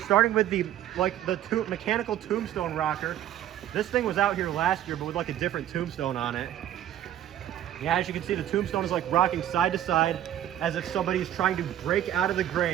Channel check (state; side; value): quieter; left; 11.7 dB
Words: with the mechanical tombstone rocker. This thing was out here last year, but with like a different tombstone on it. Yeah, as you can see, the tombstone is like rocking side to side as if somebody's trying to break out of the